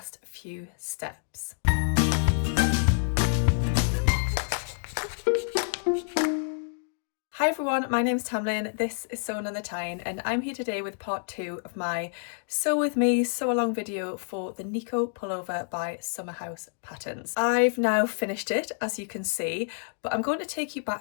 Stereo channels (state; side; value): silent; right; digital silence